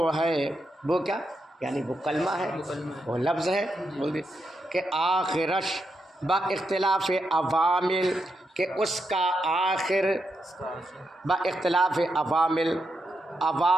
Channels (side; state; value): both; normal; correlation 0.84